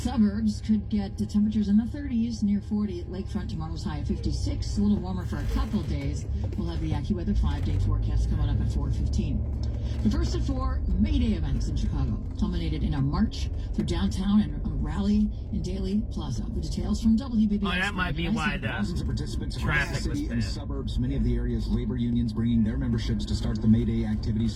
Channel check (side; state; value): both; identical; correlation 1.00